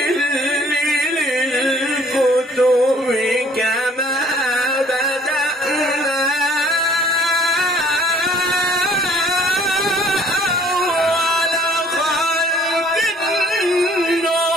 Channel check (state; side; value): normal; both; correlation 0.57